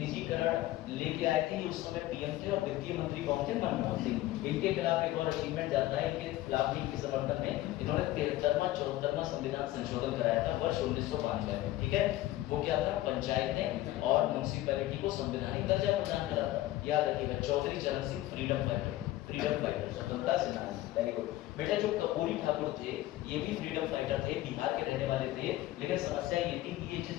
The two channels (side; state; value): right; quieter; 15.8 dB